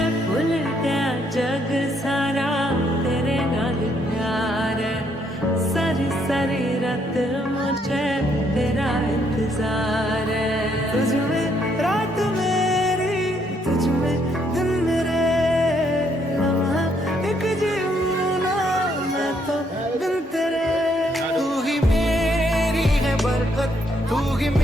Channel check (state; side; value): normal; both; correlation 0.71